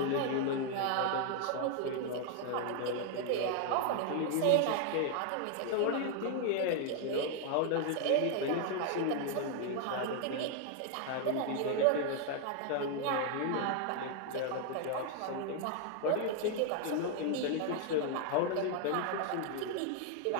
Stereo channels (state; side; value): different; both; correlation 0.00